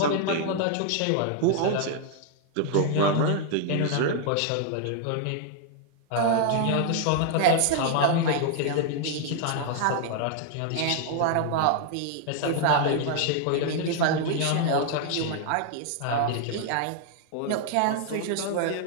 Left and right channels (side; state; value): both; different; correlation 0.00